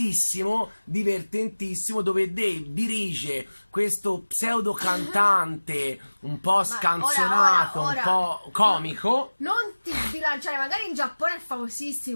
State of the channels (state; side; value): inverted; both; correlation -1.00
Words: divertentissimo, dove Dave dirige questo pseudo cantante un po' scanzonato, ora, un po' comico. Non ti sbilanciare, magari in Giappone è